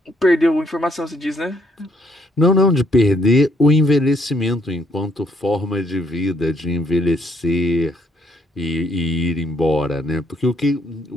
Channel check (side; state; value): both; normal; correlation 0.69